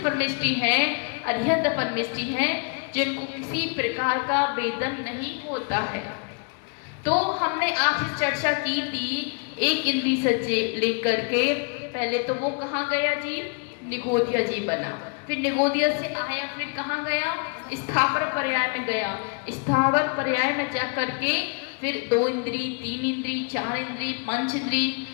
परमेष्टि है, अध्यंत परमेष्टि है, जिनको किसी प्रकार का वेदन नहीं होता है। तो हमने आपसे चर्चा की थी एक इंद्री से लेकर के, पहले तो वो कहाँ गया जी? निगोदिया जी बना, फिर निगोदिया से आया, फिर कहाँ गया? स्थावर पर्याय में गया। स्थावर पर्याय में जा करके फिर 2 इंद्री, 3 इंद्री, 4 इंद्री, पंच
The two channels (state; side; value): quieter; right; 37.1 dB